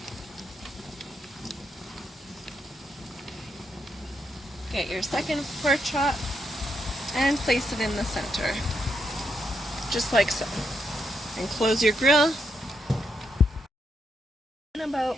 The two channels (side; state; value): both; normal; correlation 0.80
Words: Get your second pork chop and place it in the center, just like so. And close your grill. In